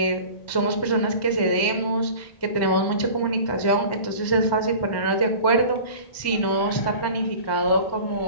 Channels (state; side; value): late; right; 1.1 ms